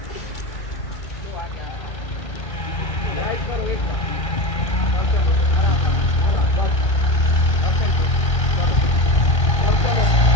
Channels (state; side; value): late; right; 1.6 ms